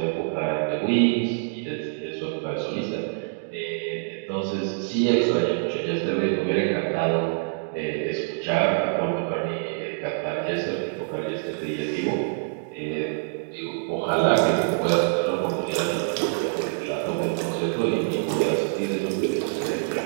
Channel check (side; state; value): left; silent; digital silence